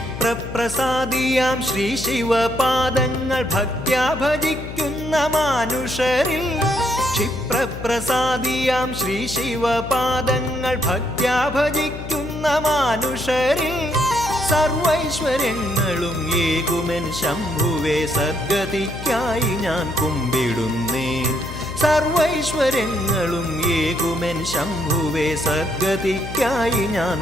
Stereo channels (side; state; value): left; noise; hum, 9 dB below the sound